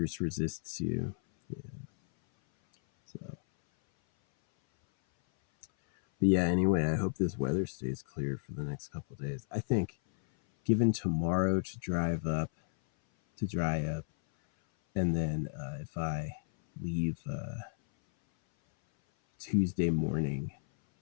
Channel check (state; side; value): silent; right; 56 dB below the other